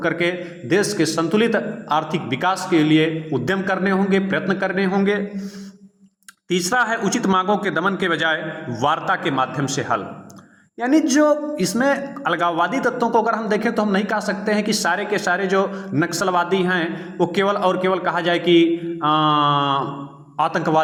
करके देश के संतुलित आर्थिक विकास के लिए उद्यम करने होंगे, प्रयत्न करने होंगे। तीसरा है उचित मांगों के दमन के बजाय वार्ता के माध्यम से हल। यानी जो इसमें अलगाववादी तत्वों को अगर हम देखें तो हम नहीं कह सकते हैं कि सारे के सारे जो नक्सलवादी हैं वो केवल और केवल कहा जाए कि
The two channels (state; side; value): identical; both; correlation 1.00